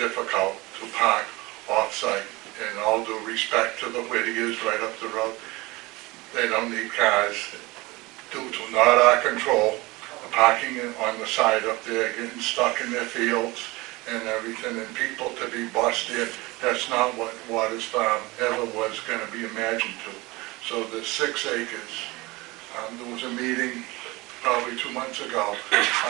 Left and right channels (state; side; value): quieter; left; 22.5 dB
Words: to park off-site. And all due respect to the Whittiers right up the road, they don't need cars due to not our control. Parking on the side up there, getting stuck in their fields and everything, and people to be busted. That's not what Waters Farm ever was going to be imagined to. So the 6 acres, there was a meeting probably 2 months ago.